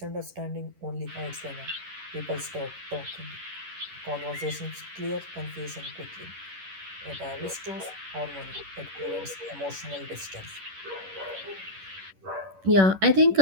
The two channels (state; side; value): late; left; 11 ms